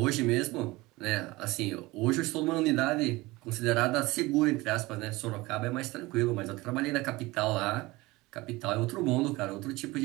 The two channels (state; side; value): quieter; left; 21.1 dB